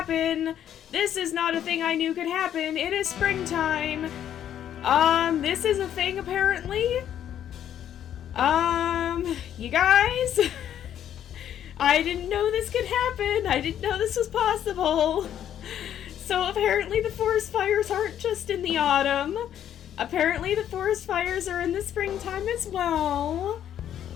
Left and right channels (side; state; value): right; quieter; 10.3 dB